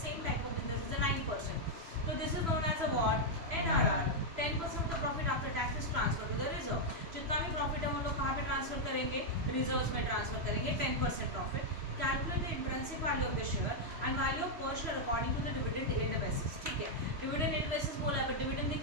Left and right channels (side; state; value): left; late; 3.0 ms